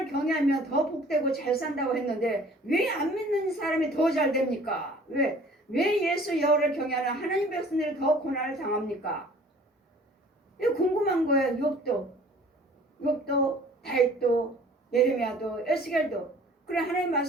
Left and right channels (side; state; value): both; normal; correlation 0.51